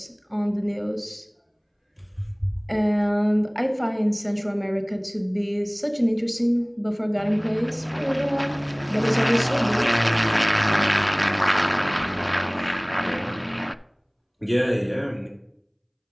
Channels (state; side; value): identical; both; correlation 1.00